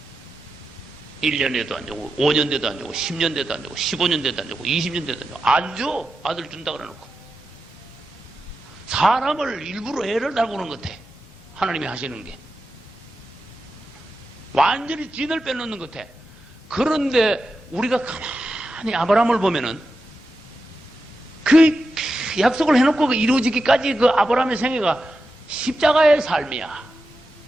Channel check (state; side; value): normal; both; correlation 0.90